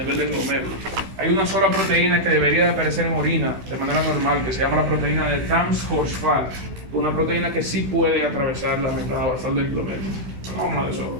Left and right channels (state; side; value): late; left; 16 ms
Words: del glomérulo. Hay una sola proteína que debería de aparecer en orina de manera normal, que se llama la proteína de Tams-Horsfall, una proteína que sí puede atravesar la membrana basal del glomérulo. Pero vamos a hablar de eso.